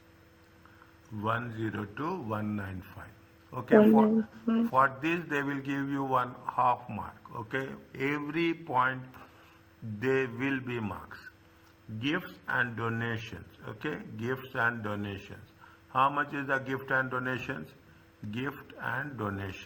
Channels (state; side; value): identical; both; correlation 1.00